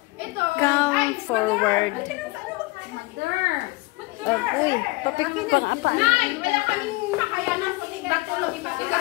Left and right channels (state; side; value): quieter; right; 23.2 dB